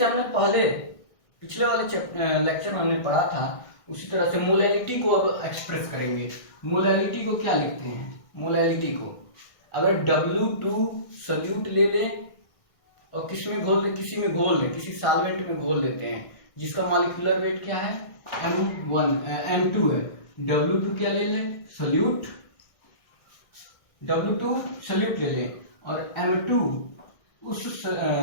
हमने पहले पिछले वाले लेक्चर में हमने पढ़ा था, उसी तरह से मोलैलिटी को अब एक्सप्रेस करेंगे। मोलैलिटी को क्या लिखते हैं? मोलैलिटी को अगर W2 सल्यूट ले लें और किसी में घोल लें, किसी सॉल्वेंट में घोल देते हैं जिसका मॉलिक्यूलर वेट क्या है? M2 है। W2 क्या ले लें? सल्यूट, W2 सल्यूट ले लें और M2 उस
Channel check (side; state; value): right; late; 1.6 ms